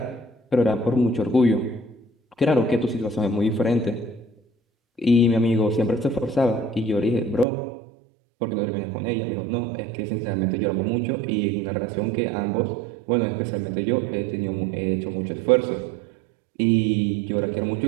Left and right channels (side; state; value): left; drops out; at 7.5 s